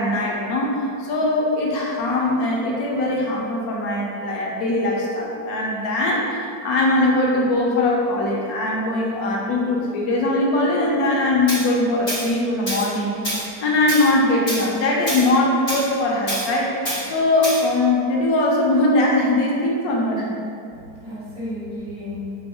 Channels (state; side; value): late; right; 4.4 ms